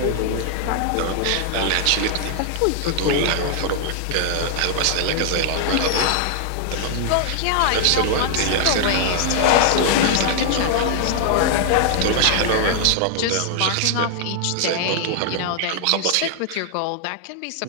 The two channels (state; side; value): different; both; correlation 0.00